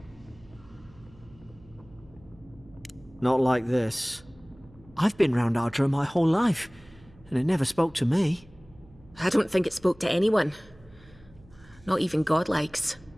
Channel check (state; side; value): noise; right; hum, 25 dB below the sound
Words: Not like this. I've been round Ardra my whole life, and it never spoke to me. I don't think it spoke to anyone. Not even godlikes.